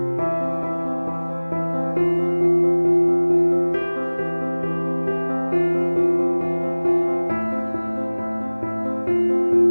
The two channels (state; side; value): inverted; both; correlation -1.00